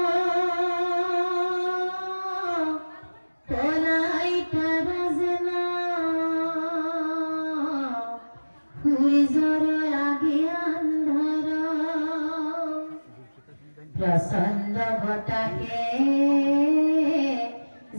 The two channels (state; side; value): inverted; both; correlation -1.00